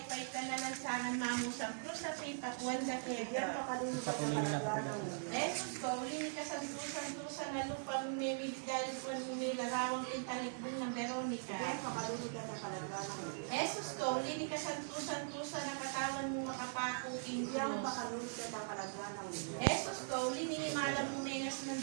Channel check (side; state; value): left; silent; digital silence